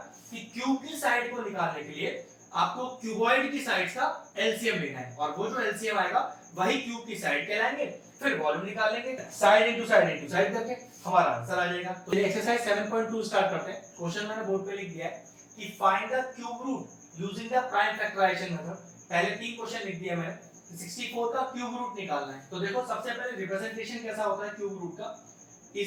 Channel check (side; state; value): both; identical; correlation 1.00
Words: कि क्यूब की साइड को निकालने के लिए आपको क्यूबॉइड की साइड्स का एलसीएम लेना है, और वो जो एलसीएम आएगा वही क्यूब की साइड कहलाएंगे। फिर वॉल्यूम निकाल लेंगे, साइड इनटू साइड करके हमारा आंसर आ जाएगा। तो ये एक्सरसाइज 7.2 स्टार्ट करते हैं। क्वेश्चन मैंने बोर्ड पे लिख दिया है कि find the cube root using the prime factorisation method. पहले 3 क्वेश्चन लिख दिया मैंने, 64 का क्यूब रूट निकालना है। तो देखो सबसे पहले रिप्रेजेंटेशन कैसा होता है क्यूब रूट का,